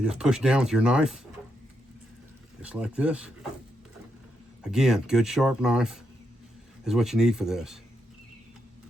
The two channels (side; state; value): both; normal; correlation 0.81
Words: just push down with your knife, just like this. Again, good sharp knife is what you need for this.